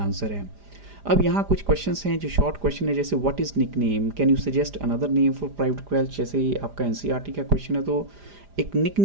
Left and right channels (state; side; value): late; left; 4.9 ms